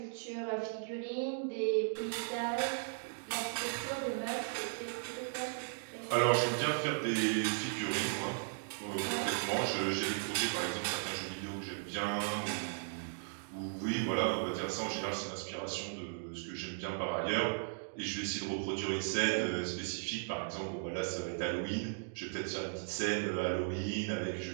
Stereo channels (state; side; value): silent; left; digital silence